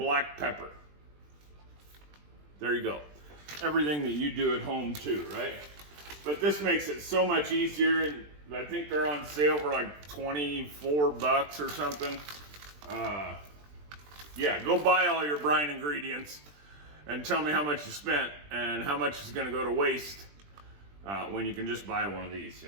pepper. There you go. Everything that you do at home too, right? But this makes it so much easier. I think they're on sale for like 24 bucks or something. Yeah, go buy all your brine ingredients and tell me how much you spent and how much is going to go to waste when you can just buy one of these,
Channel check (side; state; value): left; late; 20 ms